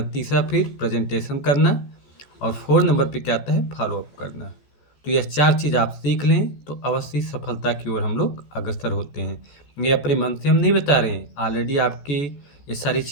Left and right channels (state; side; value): late; right; 14 ms